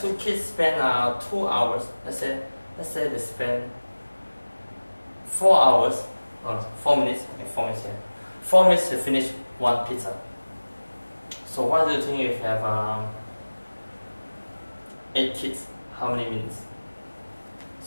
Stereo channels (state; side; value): inverted; both; correlation -1.00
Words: 2 kids spend 2 hours. Let's say they spend 4 hours, or 4 minutes. Okay, 4 minutes here. 4 minutes to finish 1 pizza. So what do you think if you have 8 kids? How many minutes?